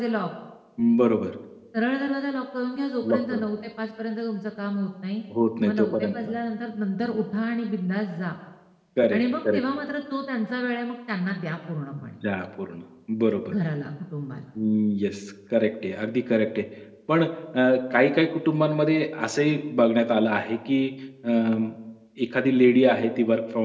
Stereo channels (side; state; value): both; identical; correlation 1.00